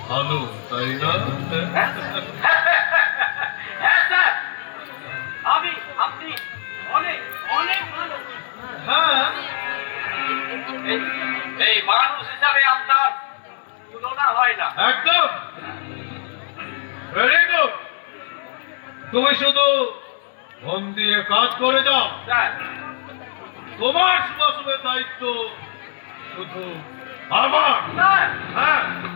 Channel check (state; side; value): silent; right; 60 dB below the other